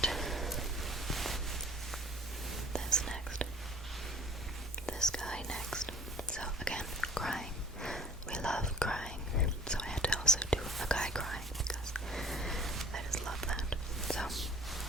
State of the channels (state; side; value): normal; both; correlation 0.49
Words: this next. This guy next. So again, crying. We love crying. So I had to also do a guy crying because I just love that. So